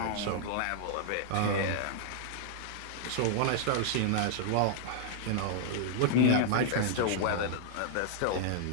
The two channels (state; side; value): different; both; correlation -0.01